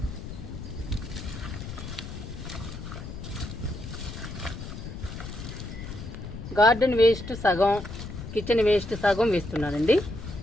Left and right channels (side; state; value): left; noise; rumble, 9 dB below the sound